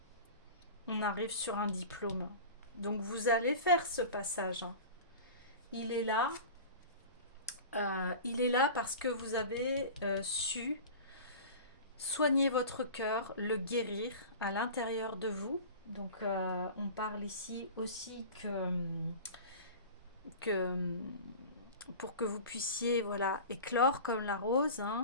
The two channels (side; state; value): both; inverted; correlation -0.35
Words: arrive sur un diplôme. Donc, vous allez faire ce passage. Hein. Il est là. Il est là parce que vous avez su soigner votre cœur, le guérir à l'intérieur de vous. Donc, on parle ici aussi que pour que vous puissiez voilà, éclore comme la rose